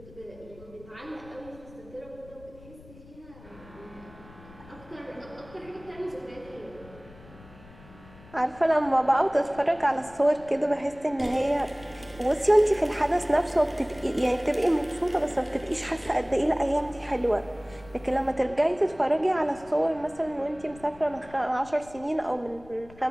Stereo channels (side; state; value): left; noise; rumble, 21 dB below the sound